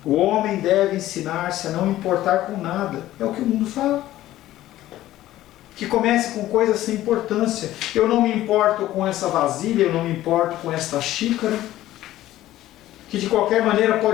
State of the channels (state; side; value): quieter; right; 14.6 dB